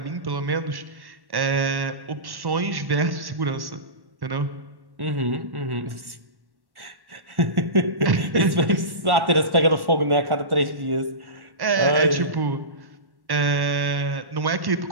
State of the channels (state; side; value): late; left; 1.1 ms